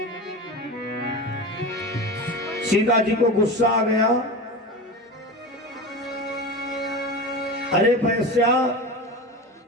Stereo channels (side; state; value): both; normal; correlation 0.27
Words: सीता जी को गुस्सा आ गया, अरे वैश्या,